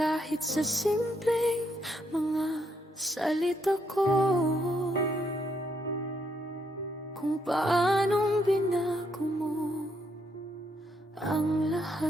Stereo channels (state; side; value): normal; both; correlation 0.75